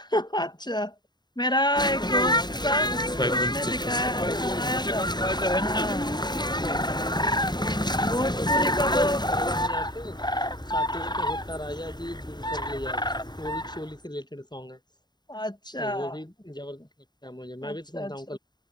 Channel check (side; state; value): right; late; 0.21 ms